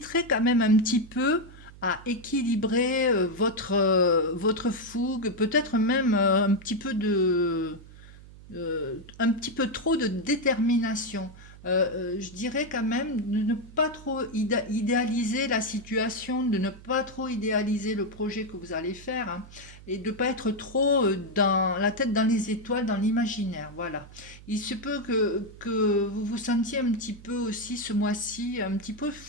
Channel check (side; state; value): right; noise; hum, 19 dB below the sound